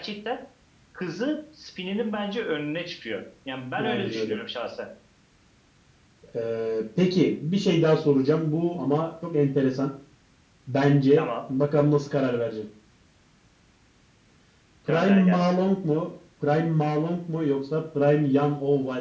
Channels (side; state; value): both; identical; correlation 1.00